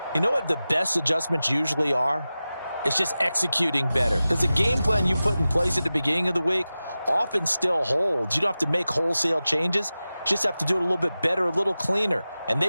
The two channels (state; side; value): inverted; both; correlation -0.95